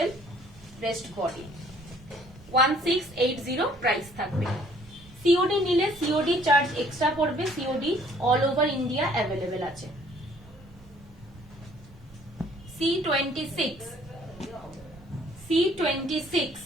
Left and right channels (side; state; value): both; normal; correlation 0.59